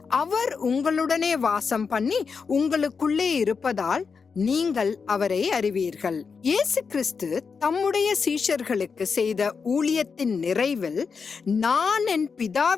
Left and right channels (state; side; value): quieter; right; 5.4 dB